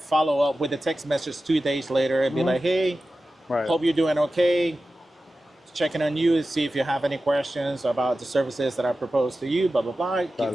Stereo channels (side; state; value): both; normal; correlation 0.94